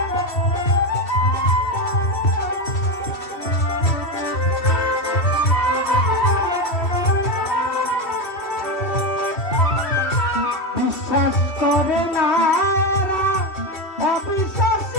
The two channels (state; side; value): late; right; 2.7 ms